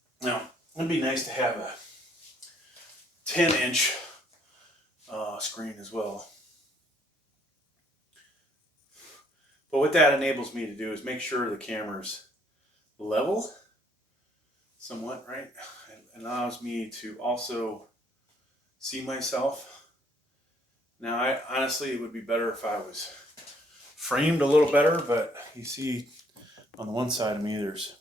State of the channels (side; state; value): both; normal; correlation 0.65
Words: Now, be nice to have a 10-inch screen as well. But what that enables me to do is make sure the camera's level somewhat, right? It allows me to also see myself. Now, honestly, it would be better if I was framed a little better, but you see on the one side of me, there's